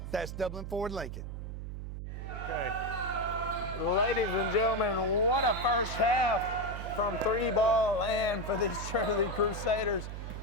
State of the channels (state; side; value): noise; right; hum, 7 dB below the sound